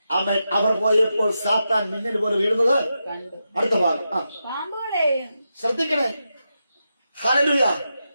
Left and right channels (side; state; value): both; inverted; correlation -0.88